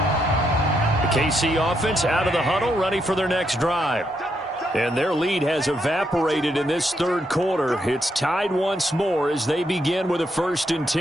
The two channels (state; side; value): normal; both; correlation 0.78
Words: KC offense out of the huddle, ready for their next drive. And their lead has evaporated in this third quarter. It's tied once more as they begin with a 1st and